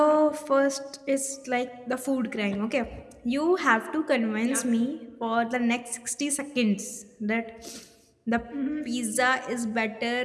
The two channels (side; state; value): both; identical; correlation 1.00